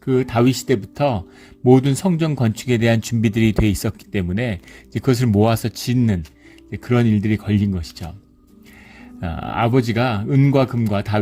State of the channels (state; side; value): identical; both; correlation 1.00